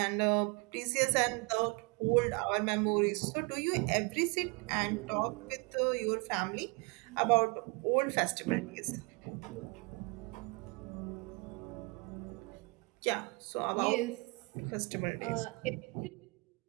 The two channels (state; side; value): quieter; left; 29.3 dB